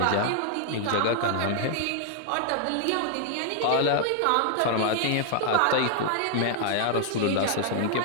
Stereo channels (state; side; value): different; both; correlation 0.00